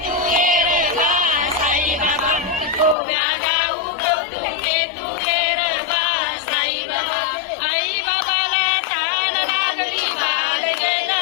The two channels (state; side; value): drops out; right; at 3.0 s